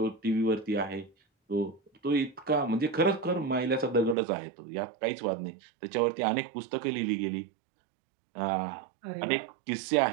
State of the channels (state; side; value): drops out; left; at 4.2 s